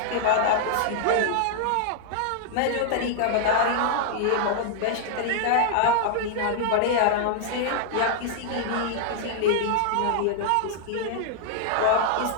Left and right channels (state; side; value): different; both; correlation -0.01